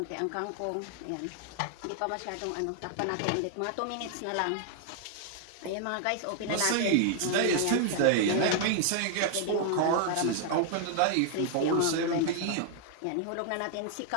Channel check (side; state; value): both; different; correlation 0.00